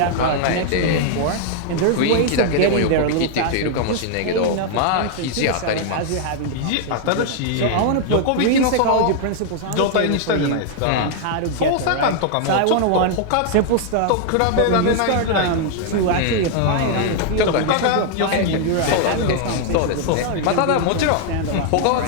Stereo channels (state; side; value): different; both; correlation 0.00